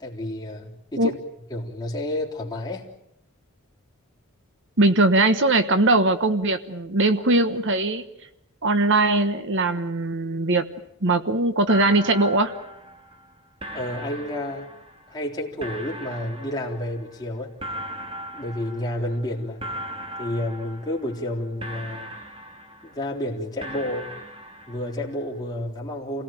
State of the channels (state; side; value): normal; both; correlation 0.15